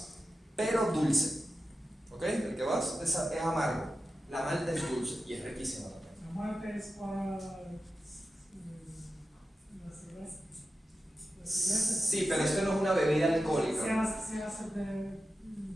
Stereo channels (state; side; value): normal; both; correlation 0.92